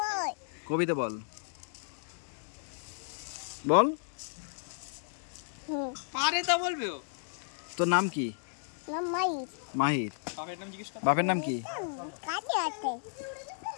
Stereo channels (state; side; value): silent; right; digital silence